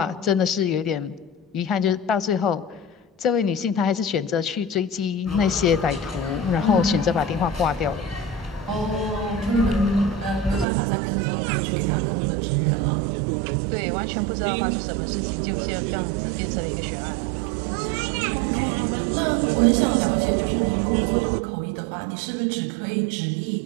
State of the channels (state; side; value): drops out; left; at 10.7 s